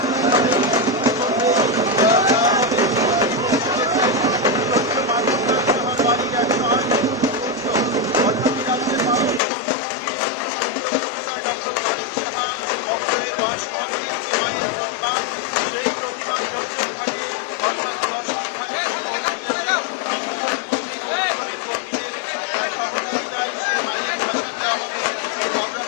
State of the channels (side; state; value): right; drops out; at 9.4 s